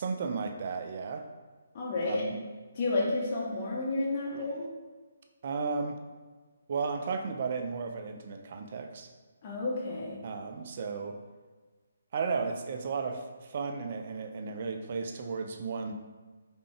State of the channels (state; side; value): inverted; both; correlation -0.73